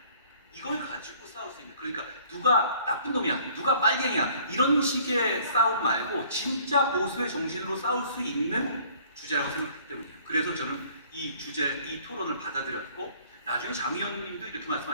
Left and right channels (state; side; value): inverted; both; correlation -0.56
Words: 이걸 가지고 싸울 수 있는, 그러니까 누가 나쁜 놈이야, 누가 빨갱이야 이런 식의 싸움 말고 진짜 보수의 정신으로 싸울 수 있는 주제라고 생각하기 때문이에요. 그래서 저는 이 토론을 받아들였고 나중에 장 의원님도 이렇게